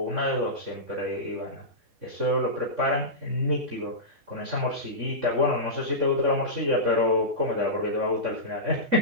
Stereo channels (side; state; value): left; late; 3.6 ms